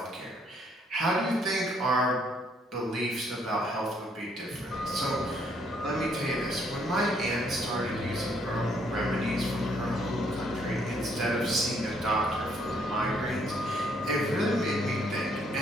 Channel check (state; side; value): normal; both; correlation 0.68